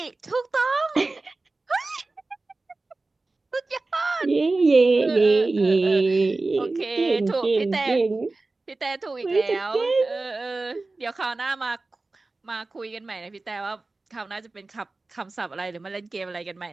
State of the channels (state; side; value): quieter; left; 3.4 dB